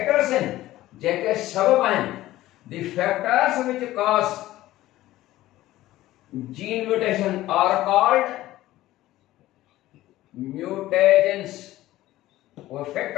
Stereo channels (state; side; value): quieter; right; 15.8 dB